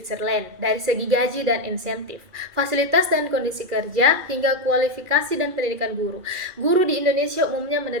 dari segi gaji dan insentif, fasilitas dan kondisi kerja, hingga kualifikasi dan pendidikan guru. Guru di Indonesia umumnya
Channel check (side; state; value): left; late; 2.3 ms